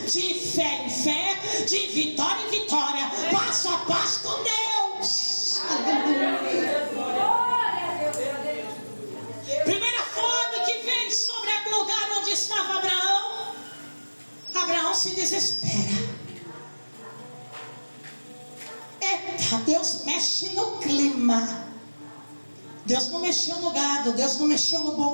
de fé em fé, de vitória em vitória, passo a passo com Deus. Aleluia. Primeira fome que vem sobre o lugar onde estava Abraão. Abraão se desespera. Eita, Deus mexe no clima. Deus não mexeu no gado, Deus não mexeu no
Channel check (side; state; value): both; inverted; correlation -1.00